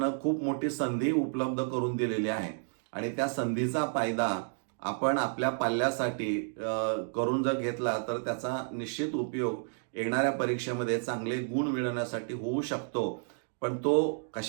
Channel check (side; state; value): left; silent; 57 dB below the other